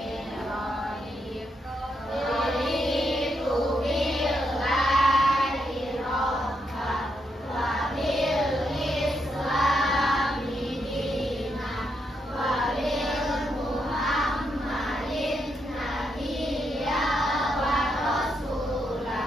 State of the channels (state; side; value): normal; both; correlation 0.80